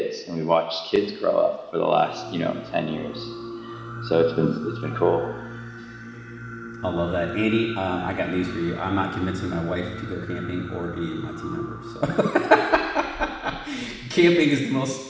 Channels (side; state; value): both; identical; correlation 1.00